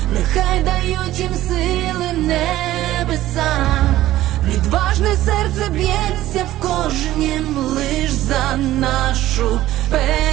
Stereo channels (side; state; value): left; quieter; 14.8 dB